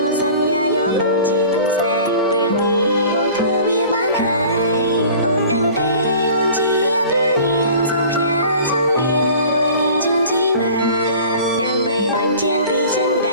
ាប់សន្យាយកអូនជាគូស្នេហ៍ពេលនេះបងធ្វើវាបានហើយអូនដឹងទេអូនជាព្រះនាងសូមផ្ញើចំរៀងមួយនេះជូនជីវ៉ាដើម្បីបញ្ជាក់ពីចិនដ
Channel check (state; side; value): inverted; both; correlation -0.44